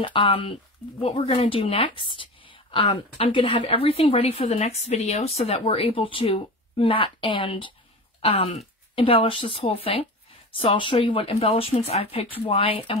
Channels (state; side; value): normal; both; correlation 0.30